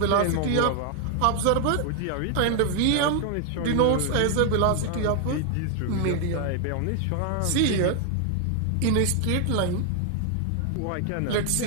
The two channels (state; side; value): different; both; correlation 0.00